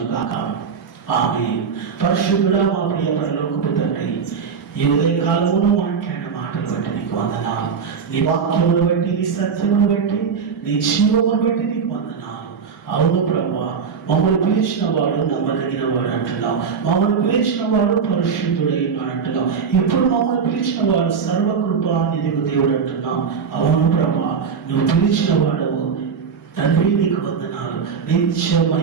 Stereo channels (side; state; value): left; quieter; 6.2 dB